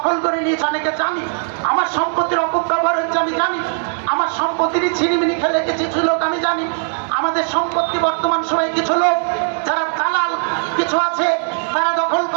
করে নিয়েছে অনেকে জানি, আমার সম্পত্তির অপব্যবহার হচ্ছে আমি জানি, আমার সম্পত্তিরই ছিনিমিনি খেলে কিছু লোক আমি জানি। আমাদের সম্পত্তি বর্তমান সময়ে কিছু লোক যারা দালাল কিছু আছে তারা দখল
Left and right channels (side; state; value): left; silent; 59 dB below the other